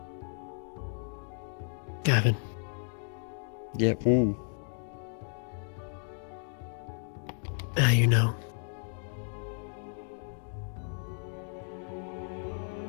Gavin. Yep. Ooh. Now you know.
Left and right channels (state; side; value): silent; right; 56 dB below the other